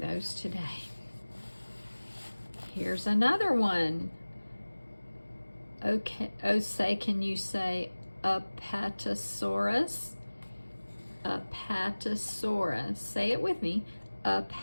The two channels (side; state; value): both; inverted; correlation -1.00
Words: today. Here's another one. Okay, oh, say, can you say Apatosaurus? Apatosaurus. Say it with me.